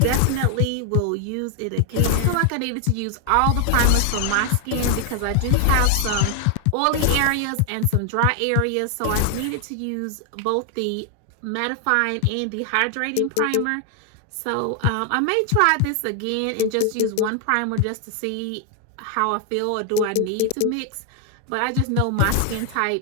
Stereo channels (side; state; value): both; different; correlation 0.00